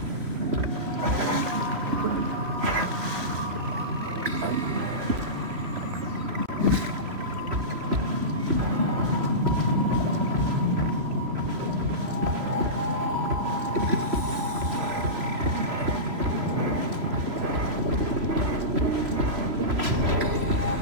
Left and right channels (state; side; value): late; left; 3.0 ms